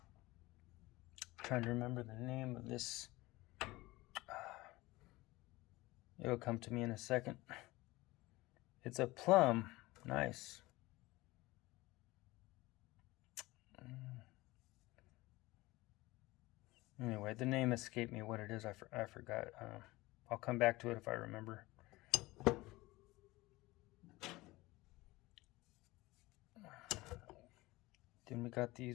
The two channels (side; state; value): right; quieter; 20.2 dB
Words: Trying to remember the name of this. It'll come to me in a second. It's a plum. Nice. Anyway, the name escaped me what it is. I forgot. I'll come back to it if I remember. Then we got